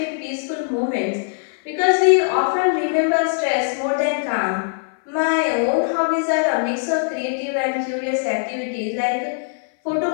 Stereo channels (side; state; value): right; silent; 59 dB below the other